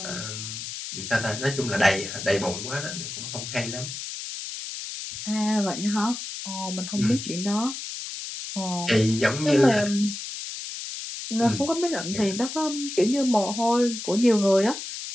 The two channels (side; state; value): left; noise; hiss, 8 dB below the sound